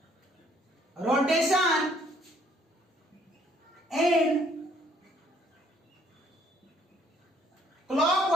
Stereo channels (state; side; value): normal; both; correlation 0.64